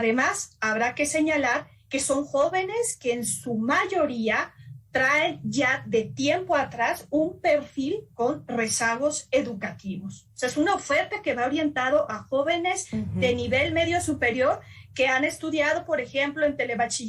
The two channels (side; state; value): both; identical; correlation 1.00